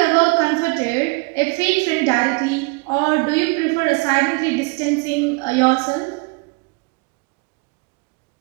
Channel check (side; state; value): left; quieter; 28.7 dB